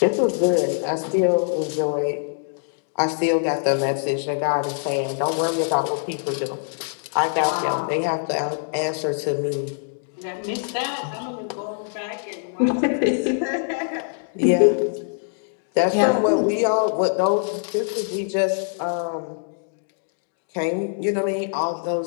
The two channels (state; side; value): silent; right; digital silence